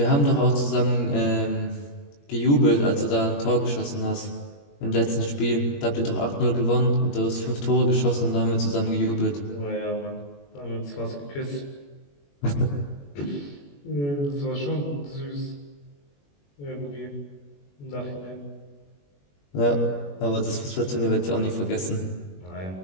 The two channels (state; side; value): late; right; 21 ms